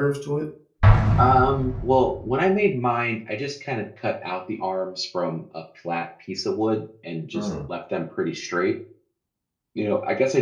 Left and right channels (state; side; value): identical; both; correlation 1.00